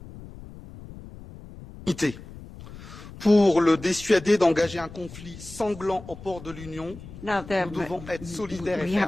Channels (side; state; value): left; noise; rumble, 16 dB below the sound